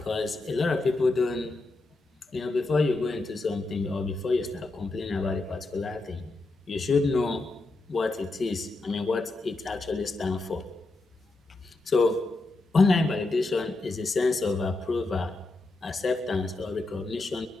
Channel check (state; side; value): quieter; right; 3.1 dB